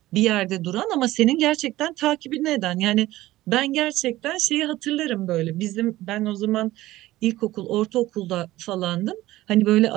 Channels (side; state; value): left; quieter; 16.5 dB